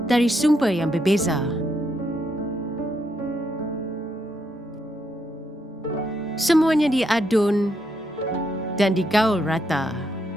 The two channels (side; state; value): both; normal; correlation 0.78